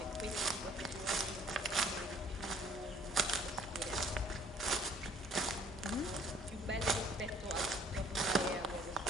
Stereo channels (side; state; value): both; normal; correlation 0.58